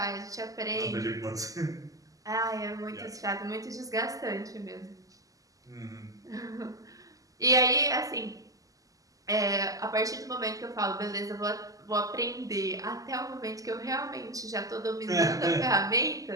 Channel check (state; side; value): late; left; 0.17 ms